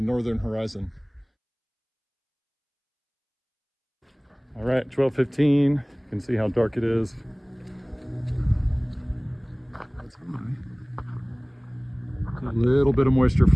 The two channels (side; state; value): both; identical; correlation 1.00